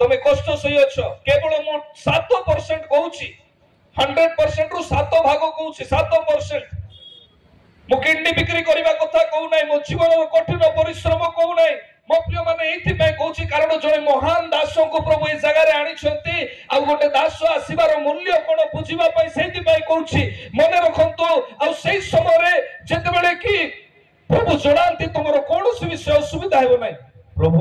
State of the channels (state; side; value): identical; both; correlation 1.00